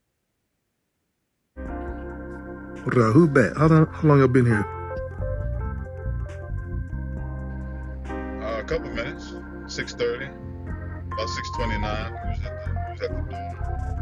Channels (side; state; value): both; identical; correlation 1.00